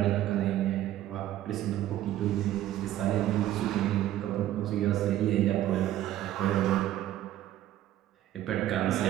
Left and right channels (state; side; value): quieter; left; 13.2 dB